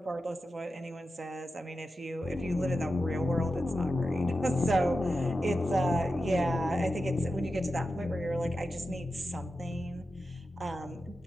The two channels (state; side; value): normal; both; correlation 0.91